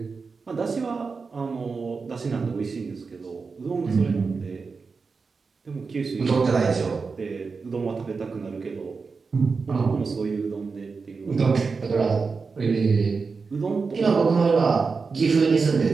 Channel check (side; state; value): left; quieter; 4.7 dB